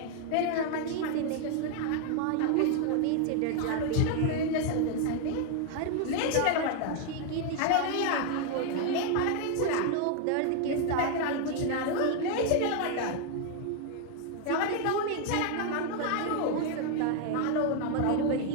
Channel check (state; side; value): different; both; correlation 0.00